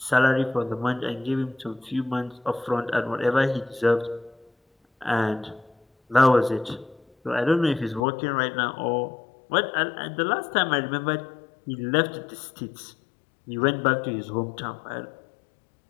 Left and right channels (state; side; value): drops out; right; at 8.1 s